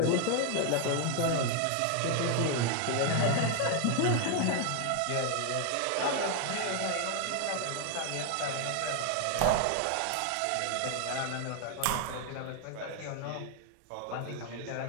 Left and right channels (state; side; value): different; both; correlation 0.00